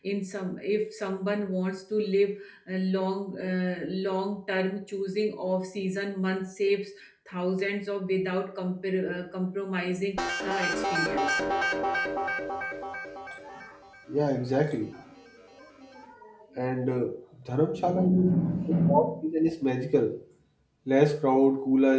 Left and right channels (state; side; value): identical; both; correlation 1.00